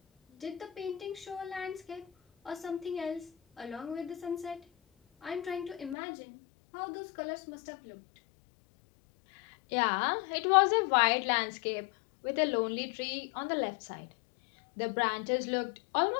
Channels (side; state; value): right; drops out; at 6.0 s